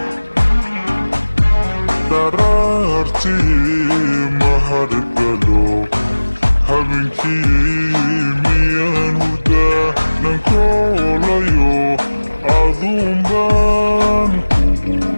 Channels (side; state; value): both; inverted; correlation -1.00